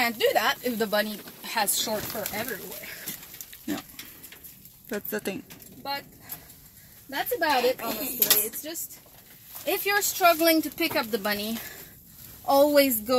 do that if the bunny has short fur everywhere. No, that's the thing. But that's about it, honestly. It's just, if you're struggling to pick up the bunny, always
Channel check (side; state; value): both; identical; correlation 1.00